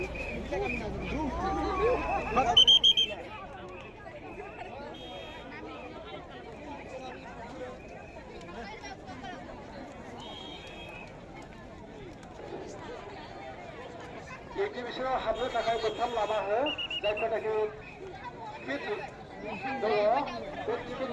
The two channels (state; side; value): identical; both; correlation 1.00